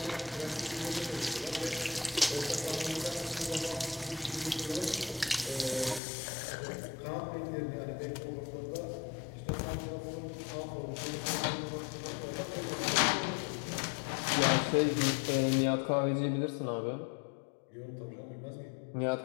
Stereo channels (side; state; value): right; drops out; at 6.0 s